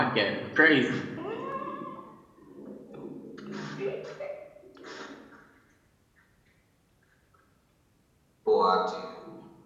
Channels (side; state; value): both; identical; correlation 1.00